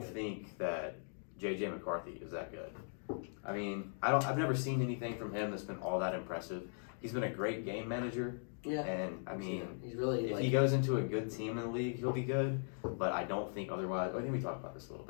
good. think that J.J. McCarthy is that good. I mean, I've never seen anything from him that's been all that impressive. He's been a great game manager, Yeah. and I mean, he's really if like he goes into a good team in the league, he'll be good. But I don't think otherwise. I think we talked about this a little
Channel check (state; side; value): silent; right; digital silence